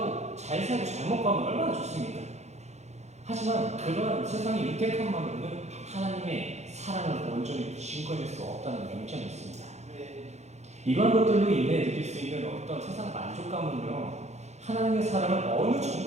잘 살고 잘 먹고 하면 얼마나 좋습니까? 하지만 그러한 세상의 윤택함만으로는 하나님의 사랑을 온전히 증거할 수 없다는 명점이 있습니다. 이러한 것들로 인해 느낄 수 있는 어떤 세상 만족감은요, 하나님의 사랑을 어느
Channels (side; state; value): left; late; 0.33 ms